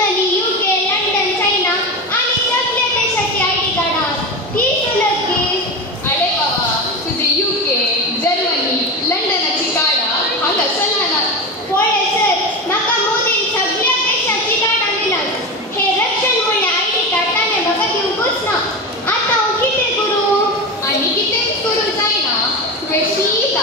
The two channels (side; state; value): both; normal; correlation 0.22